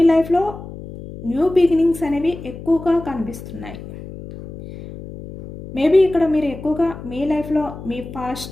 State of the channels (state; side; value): noise; left; hum, 13 dB below the sound